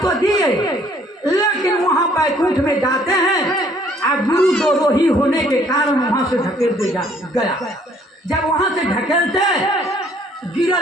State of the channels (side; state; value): both; normal; correlation 0.61